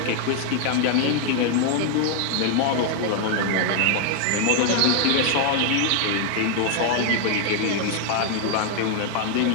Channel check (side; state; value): both; different; correlation 0.00